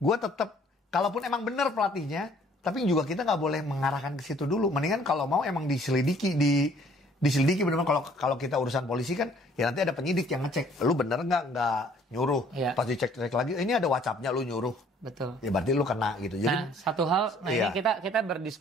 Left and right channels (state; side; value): normal; both; correlation 0.58